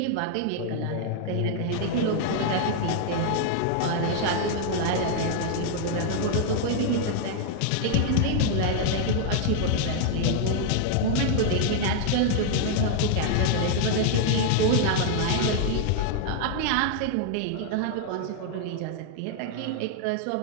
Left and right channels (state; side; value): different; both; correlation 0.00